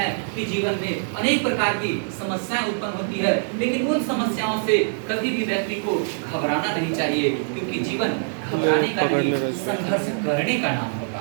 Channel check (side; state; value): left; silent; 60 dB below the other